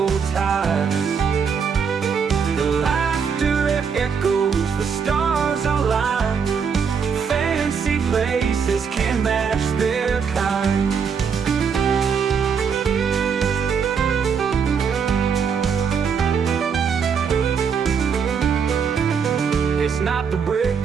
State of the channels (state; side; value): quieter; left; 6.4 dB